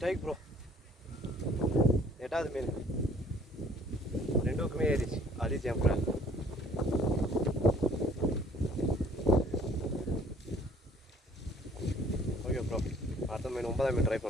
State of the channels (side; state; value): both; normal; correlation 0.57